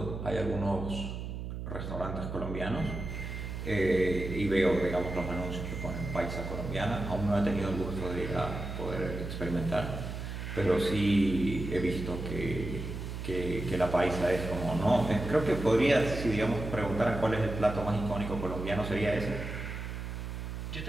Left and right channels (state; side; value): noise; right; hum, 6 dB below the sound